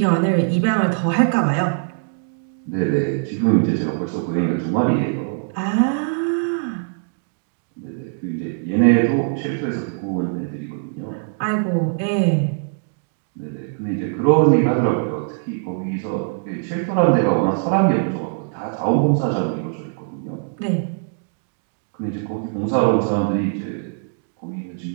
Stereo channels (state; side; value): silent; left; digital silence